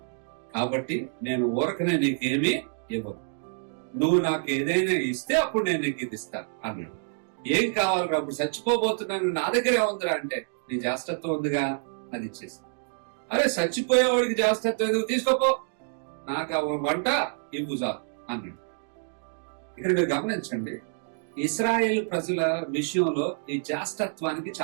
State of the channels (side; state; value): left; silent; digital silence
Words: కాబట్టి నేను ఊరకనే నీకేమీ ఇవ్వను. నువ్వు నాకు ఏదైనా ఇస్తే అప్పుడు నేను నీకు ఇది ఇస్తాను అన్నాడు. ఏం కావాలి? అప్పుడు చచ్చిపోబోతున్నాను, నా దగ్గరే ఉందిరా అంటే, నీ జాస్తత్వం ఉందిగా, అది ఇచ్చేసి. అరే చచ్చిపోయేవాడికి జాస్తత్వం ఎందుకు, తీసుకోపో, నాకు వంట ఇవ్వు చాలు అన్నాడు. ఇక్కడ మీరు గమనించండి, ఇశ్రాయేల్ ప్రజల విషయంలో ఈ జాస్తత్వానికి